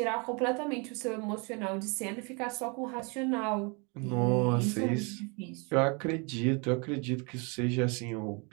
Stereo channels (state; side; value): quieter; left; 32.5 dB